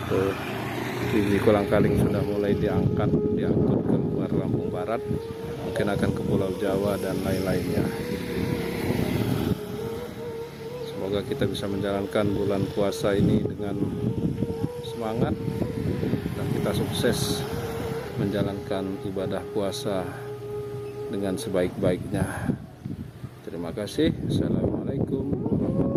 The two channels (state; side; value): identical; both; correlation 1.00